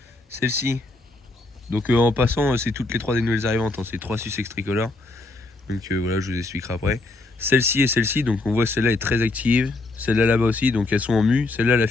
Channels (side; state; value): right; quieter; 3.0 dB